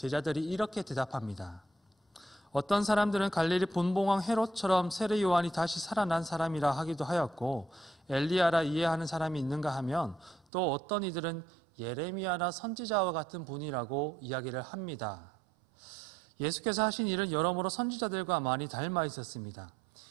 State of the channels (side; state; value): left; drops out; at 10.5 s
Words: 이렇게 대답합니다. 어떤 사람들은 갈릴리 분봉왕 헤롯처럼 세례 요한이 다시 살아난 사람이라 하기도 하였고 엘리야라 이해하는 사람이 있는가 하면 또 어떤 이들은 예레미야나 선지자와 같은 분이라고 이야기를 합니다. 예수께서 하신 일은 여러모로 선지자들과 많이 닮아 있었습니다.